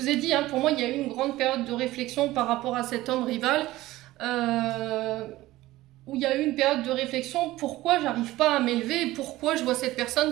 ai dit, hein, pour moi, il y a eu une grande période de réflexion par rapport à cet homme rival, où il y a eu une période de réflexion, pourquoi j'arrive pas à m'élever, pourquoi je vois cette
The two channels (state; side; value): quieter; left; 17.1 dB